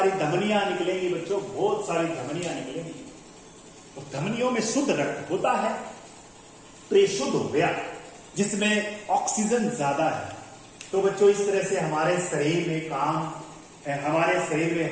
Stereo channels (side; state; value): both; identical; correlation 1.00